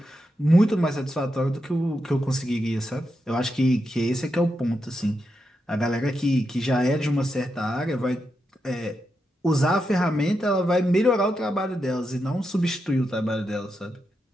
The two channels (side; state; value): both; normal; correlation 0.85